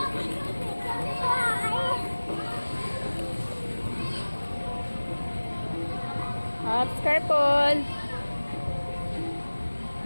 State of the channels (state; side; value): inverted; both; correlation -1.00